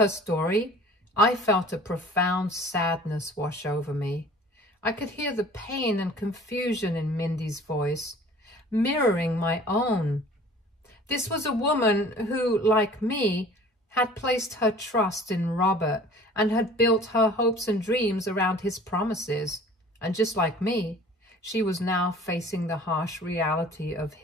story, I felt a profound sadness wash over me. I could hear the pain and confusion in Mindy's voice, mirroring my own. This was a woman who, like me, had placed her trust in Robert and had built her hopes and dreams around his promises. And just like me, she was now facing the harsh reality of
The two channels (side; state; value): both; normal; correlation 0.47